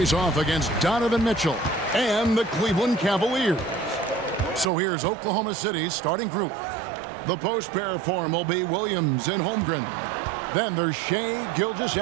off against Donovan Mitchell and the Cleveland Cavaliers. So here's Oklahoma City's starting group. The post pair form will be Williams and Holmgren. Then there's Shai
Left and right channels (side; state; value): left; drops out; at 4.7 s